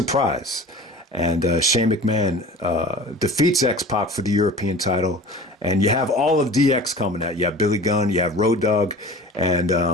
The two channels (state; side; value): normal; both; correlation 0.39